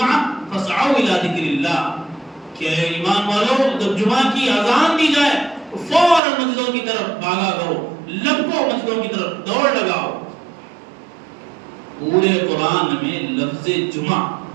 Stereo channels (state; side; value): drops out; left; at 6.2 s